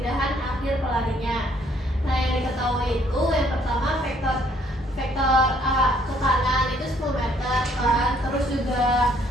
akhir pelarinya. Nah, yang diketahui itu yang pertama vektor A ke kanan itu 10 meter kan, terus juga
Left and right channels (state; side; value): normal; both; correlation 0.65